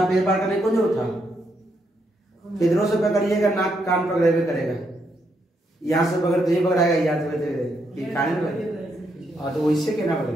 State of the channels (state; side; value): normal; both; correlation 0.78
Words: पेड़ पार करने को जरूरत था, इधरों से पकड़िएगा नाक कान पकड़े हुए करेगा, यहाँ से पकड़ तो ये पकड़ाएगा, यहाँ से खाने में लगे, और तो इससे कहना